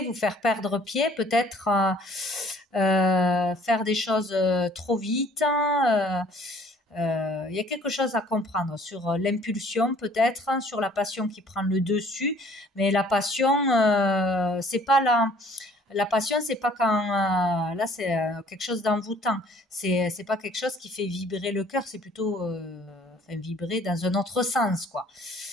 vous faire perdre pied, peut-être faire des choses trop vite. Il y a quelque chose à comprendre sur l'impulsion peut-être, sur la passion qui prend le dessus. Mais la passion, c'est pas la passion, c'est pas quand là c'est quelque chose d'envoûtant. C'est pas quelque chose qui fait vibrer le cœur, c'est plutôt vibrer dans un autre sens, quoi.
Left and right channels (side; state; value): both; normal; correlation 0.56